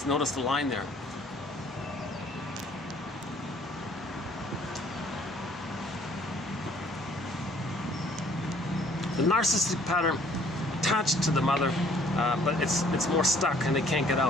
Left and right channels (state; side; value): normal; both; correlation 0.59